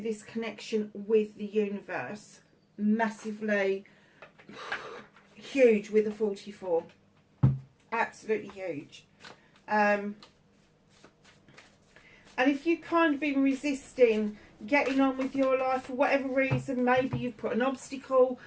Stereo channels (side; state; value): both; identical; correlation 1.00